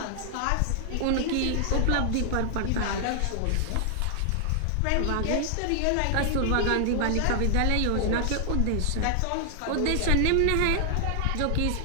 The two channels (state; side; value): different; both; correlation 0.00